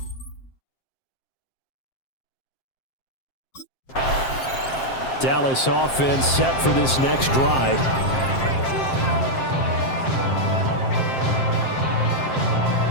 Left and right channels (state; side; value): late; right; 7.6 ms